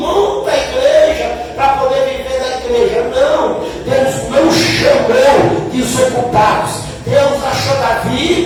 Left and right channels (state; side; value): identical; both; correlation 1.00